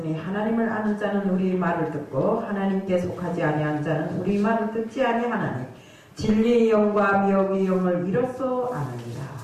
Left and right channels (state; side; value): identical; both; correlation 1.00